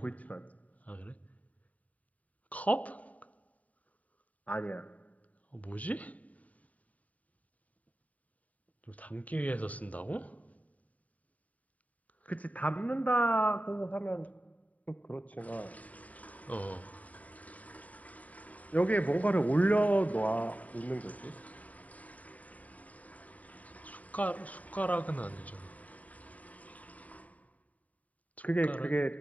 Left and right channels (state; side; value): late; right; 0.071 ms